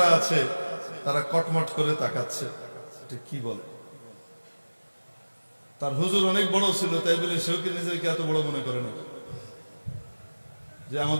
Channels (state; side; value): inverted; both; correlation -1.00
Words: আছে তারা কটমট করে তাকাচ্ছে, এটা কি বলে। তার হুজুর অনেক বড় ছিল, তাই বলে সেও কি নিজেকে এত বড় মনে করে না যে